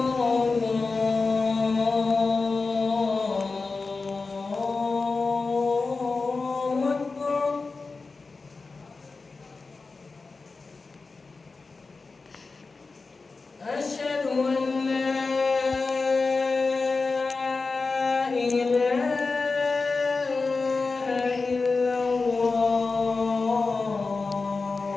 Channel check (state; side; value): quieter; right; 4.0 dB